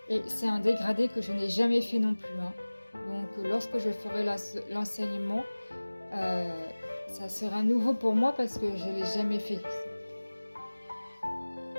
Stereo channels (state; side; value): inverted; both; correlation -1.00